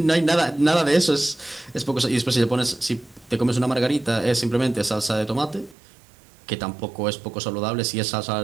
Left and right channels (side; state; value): left; drops out; at 5.8 s